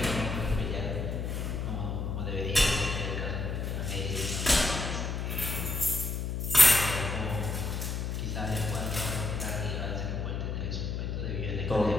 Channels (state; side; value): noise; left; hum, 2 dB below the sound